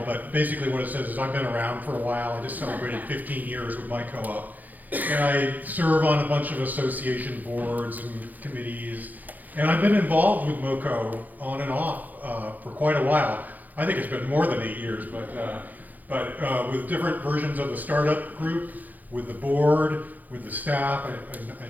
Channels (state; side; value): late; left; 0.082 ms